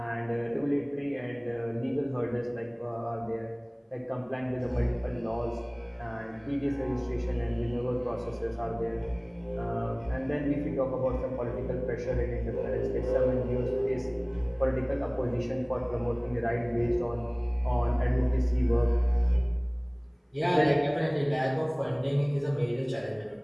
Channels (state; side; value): identical; both; correlation 1.00